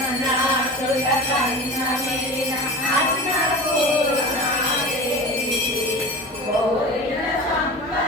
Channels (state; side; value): normal; both; correlation 0.33